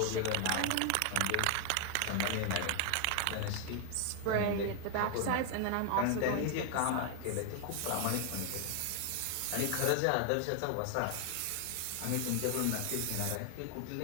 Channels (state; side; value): different; both; correlation 0.00